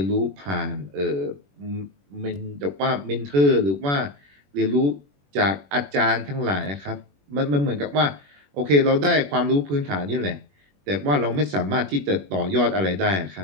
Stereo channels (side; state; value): left; late; 21 ms